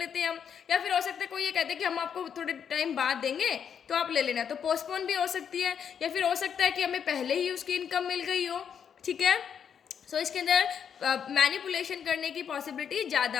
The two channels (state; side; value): quieter; right; 7.8 dB